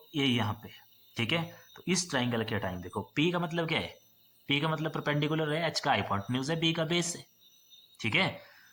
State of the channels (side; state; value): both; identical; correlation 1.00